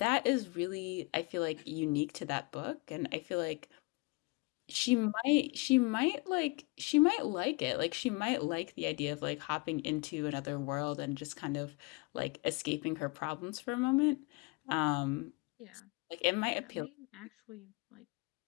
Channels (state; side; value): quieter; right; 27.6 dB